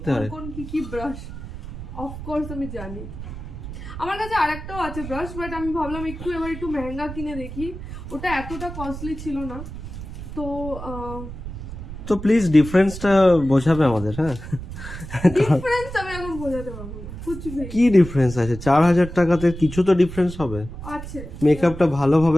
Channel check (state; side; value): noise; right; rumble, 10 dB below the sound